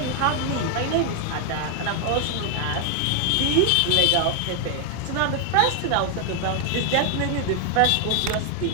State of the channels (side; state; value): both; different; correlation 0.00